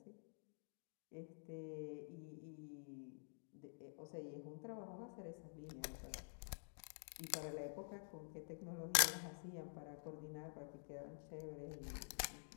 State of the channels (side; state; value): right; silent; digital silence